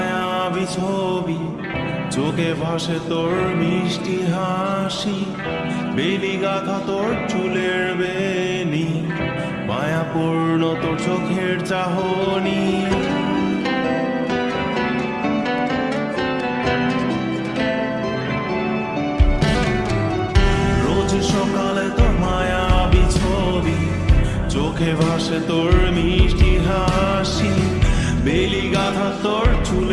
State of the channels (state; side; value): identical; both; correlation 1.00